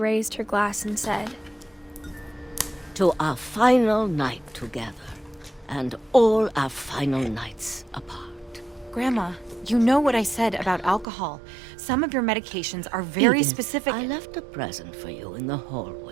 her glass and said, "To our final night together, and all our final nights apart." Grandma, you know what I said about alcohol. Some of your medications are very Edith, specific. I left a present for you in the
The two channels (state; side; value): drops out; left; at 11.1 s